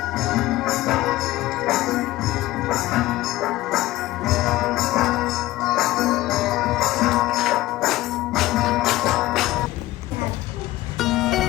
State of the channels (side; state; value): right; quieter; 17.3 dB